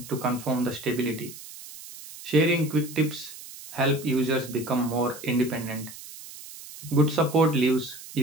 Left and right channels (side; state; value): right; noise; hiss, 15 dB below the sound